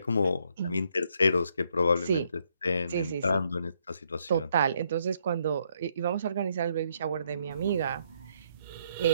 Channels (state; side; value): inverted; both; correlation -0.73